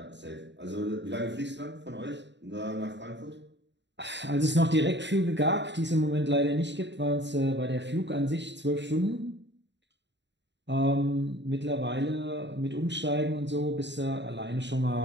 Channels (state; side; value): late; left; 0.52 ms